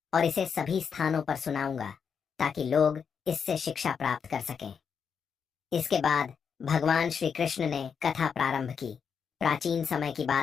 और इसे सभी स्थानों पर सुनाऊंगा ताकि लोग इससे शिक्षा प्राप्त कर सकें। इसके बाद भगवान श्री कृष्ण ने कथा प्रारंभ की। प्राचीन समय की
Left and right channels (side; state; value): right; quieter; 6.6 dB